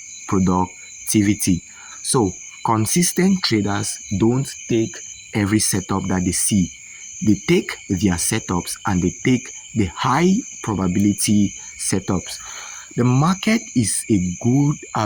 productivity. So consistent traders don't take every setup that they see. They take their setups and they take the high probability setups. The market is a good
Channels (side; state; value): both; identical; correlation 1.00